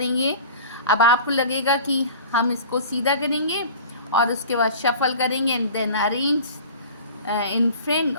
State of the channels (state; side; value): inverted; both; correlation -0.40